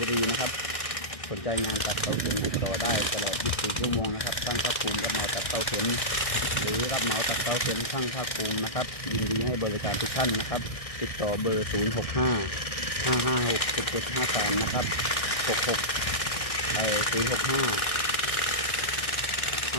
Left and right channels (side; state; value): right; late; 1.6 ms